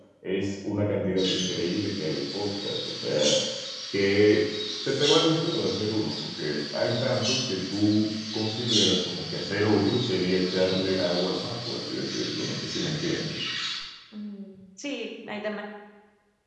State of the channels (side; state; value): both; identical; correlation 1.00